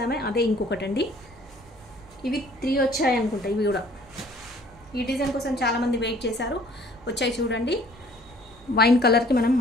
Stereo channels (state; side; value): normal; both; correlation 0.56